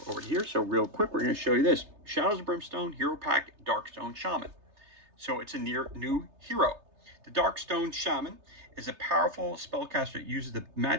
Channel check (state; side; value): late; left; 3.3 ms